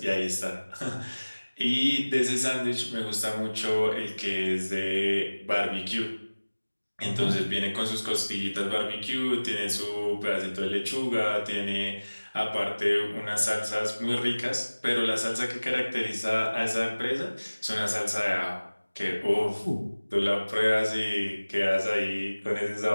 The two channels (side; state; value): both; inverted; correlation -1.00